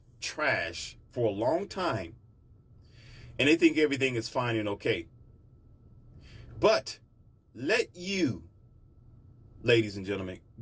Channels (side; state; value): both; identical; correlation 1.00